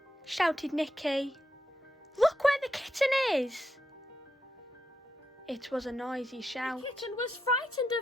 shouted Nikki. Look where the kitten is. It was a noisy shout. The kitten was frightened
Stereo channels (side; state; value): both; normal; correlation 0.84